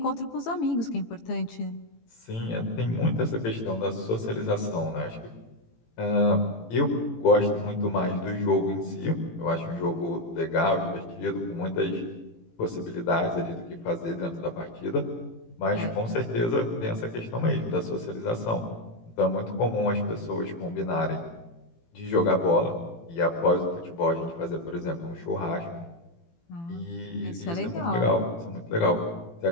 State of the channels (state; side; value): late; right; 18 ms